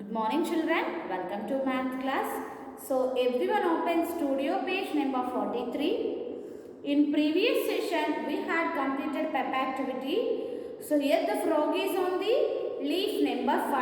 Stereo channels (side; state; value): both; identical; correlation 1.00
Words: morning children, welcome to math class. So everyone open studio page number 43. In previous session we had completed pep activity. So here the frog is on the leaf number 5.